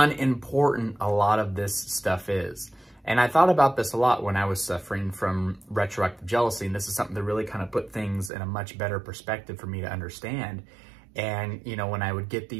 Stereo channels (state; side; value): drops out; left; at 8.3 s